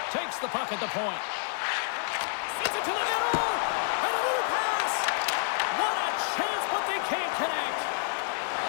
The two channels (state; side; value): silent; right; digital silence